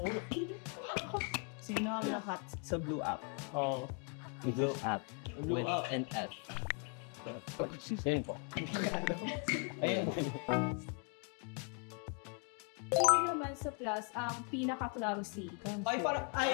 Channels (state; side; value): quieter; right; 37.9 dB